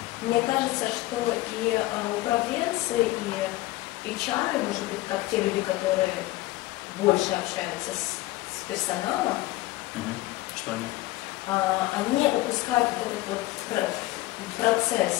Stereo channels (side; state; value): right; quieter; 18.4 dB